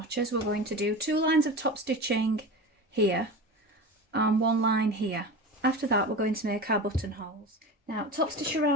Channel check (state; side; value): normal; both; correlation 0.29